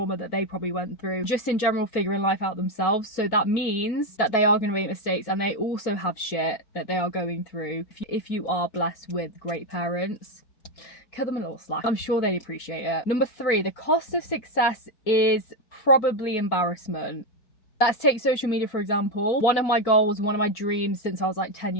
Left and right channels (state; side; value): late; right; 4.8 ms